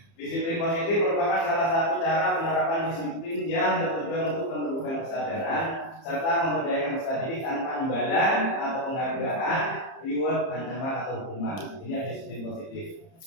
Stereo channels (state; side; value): late; right; 30 ms